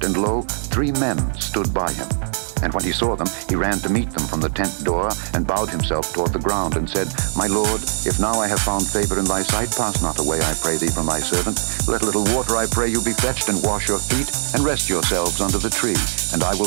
and lo, 3 men stood by him. And when he saw them, he ran to meet them from the tent door, and bowed himself toward the ground, and said, My Lord, if now I have found favor in thy sight, pass not away, I pray thee, from thy servant. Let a little water, I pray you, be fetched, and wash your feet, and rest yourselves under the tree. And I will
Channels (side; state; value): left; silent; 65 dB below the other